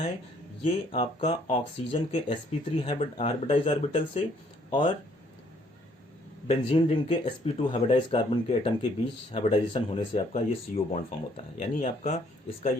ये आपका ऑक्सीजन के sp3 हाइब्रिडाइज ऑर्बिटल से और बेंजीन रिंग के sp2 हाइब्रिडाइज कार्बन के एटम के बीच हाइब्रिडाइजेशन होने से आपका ये CO बॉन्ड फॉर्म होता है। यानी आपका इसका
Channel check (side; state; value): both; normal; correlation 0.65